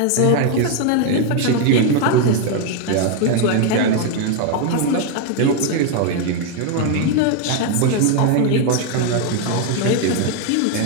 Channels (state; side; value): different; both; correlation 0.01